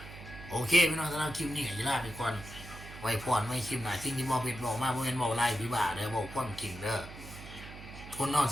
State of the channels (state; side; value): noise; right; hum, 14 dB below the sound